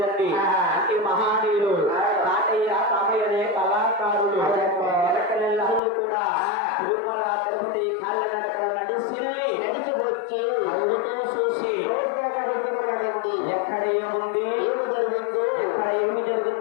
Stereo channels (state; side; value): drops out; right; at 5.8 s